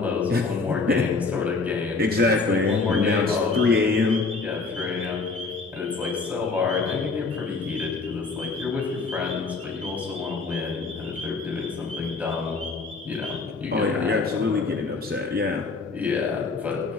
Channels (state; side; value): quieter; right; 4.1 dB